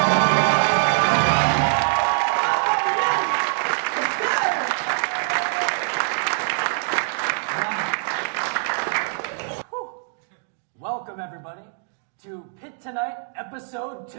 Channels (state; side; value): silent; left; digital silence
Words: Welcome, everybody, to Pitt Tonight, Episode